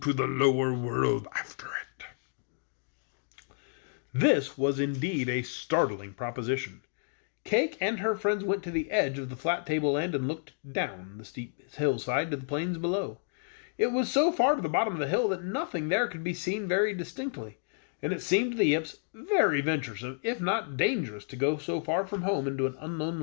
the lower world after it." This was indeed a startling proposition. Cayke and her friends went to the edge of the flat tableland and looked down the steep hillside to the plains below. It was so far to the bottom of the hill that nothing there could be seen very distinctly, and it seemed to the Yips very venturesome, if not dangerous, to go so far from home into an unknown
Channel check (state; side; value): silent; right; digital silence